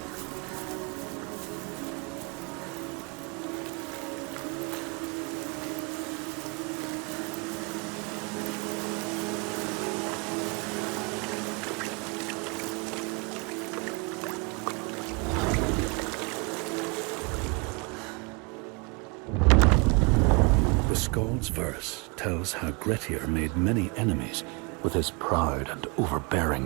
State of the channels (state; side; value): quieter; left; 30.9 dB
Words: The Skald's verse tells how Grettir made many enemies with his proud and